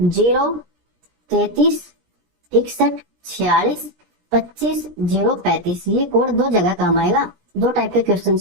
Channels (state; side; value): late; left; 17 ms